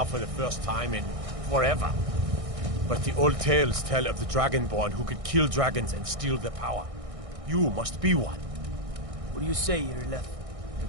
for the first time in forever. But the old tales tell of the Dragonborn who could kill dragons and steal their power. You must be one. What do you say, Irleth?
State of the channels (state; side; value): late; left; 1.6 ms